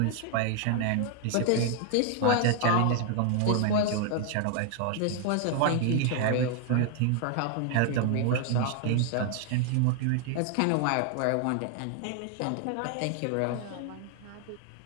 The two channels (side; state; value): both; different; correlation 0.00